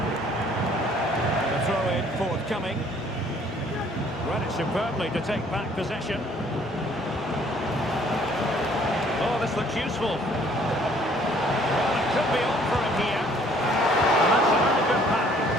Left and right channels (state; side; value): normal; both; correlation 0.60